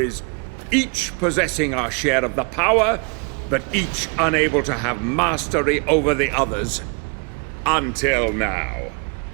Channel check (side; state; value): left; quieter; 34.6 dB